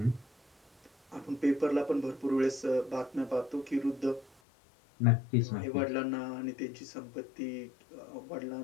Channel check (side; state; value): right; drops out; at 4.3 s